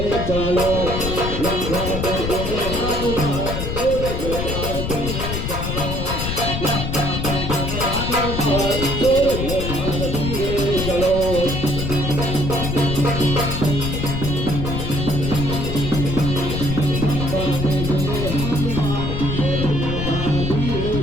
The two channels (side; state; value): left; noise; rumble, 3 dB below the sound